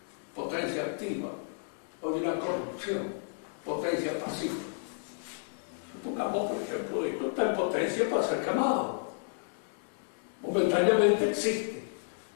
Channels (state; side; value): silent; right; digital silence